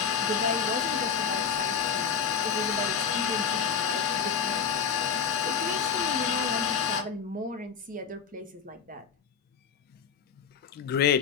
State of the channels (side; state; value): right; quieter; 7.0 dB